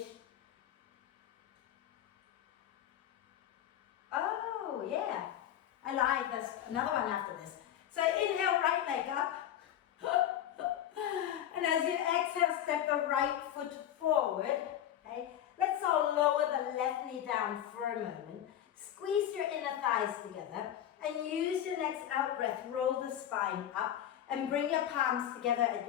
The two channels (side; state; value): right; quieter; 11.0 dB